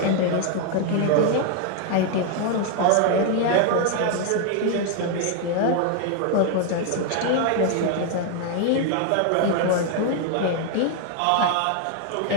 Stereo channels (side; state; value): both; different; correlation 0.01